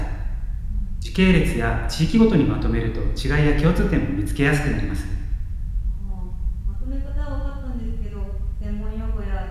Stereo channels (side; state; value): both; identical; correlation 1.00